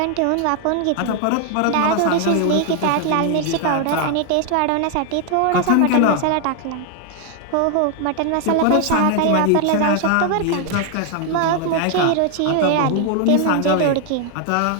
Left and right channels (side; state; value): both; different; correlation 0.00